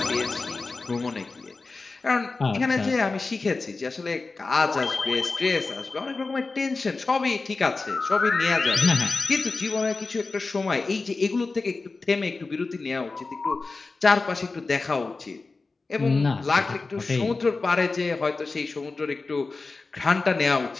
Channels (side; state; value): right; quieter; 3.8 dB